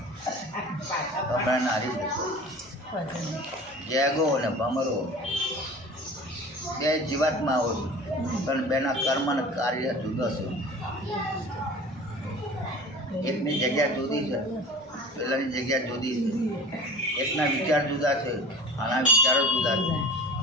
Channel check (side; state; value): both; normal; correlation 0.40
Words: ભમરાને હારી જતો ગેગો અને ભમરો બે જીવાતમાં આવો પણ બેના કર્મ અને કાર્ય જુદા છે. એકની જગ્યા જુદી છે, પેલાની જગ્યા જુદી છે. એકના વિચાર જુદા છે, આના વિચારો જુદા છે,